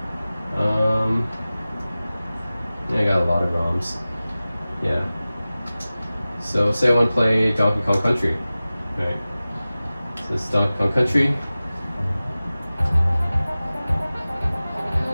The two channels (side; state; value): both; inverted; correlation -0.97